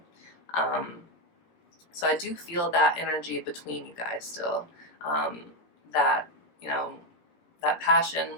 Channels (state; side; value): late; right; 17 ms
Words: So I do feel that energy between you guys still. That, you know, that passion